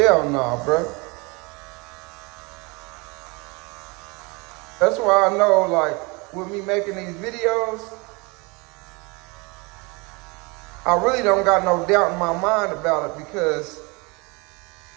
no, bro. That's why I know, like, with me making these videos, I really don't got no doubt in my mind about it, because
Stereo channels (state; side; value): quieter; left; 27.9 dB